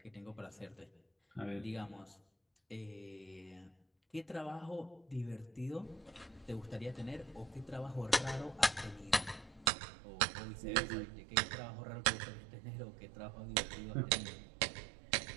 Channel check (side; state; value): left; drops out; at 9.7 s